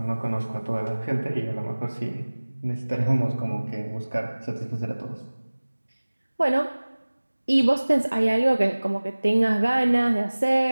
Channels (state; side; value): inverted; both; correlation -1.00